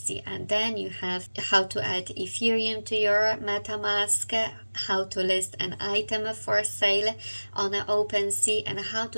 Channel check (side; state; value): both; inverted; correlation -1.00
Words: And then you have how to add Ethereum to your MetaMask, how to list an item for sale on OpenSea, and how